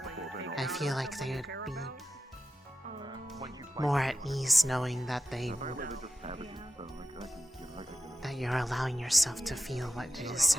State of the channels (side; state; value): both; normal; correlation 0.92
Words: I feel like they would be more at ease knowing that that you're allowing yourself to feel what it is